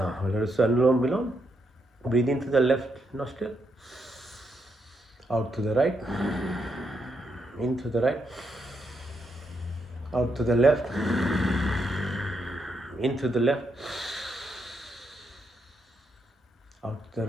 let us Anulom Vilom. Breathe into the left nostril, out to the right, into the right, out to the left, into the left, out to the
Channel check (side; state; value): both; normal; correlation 0.79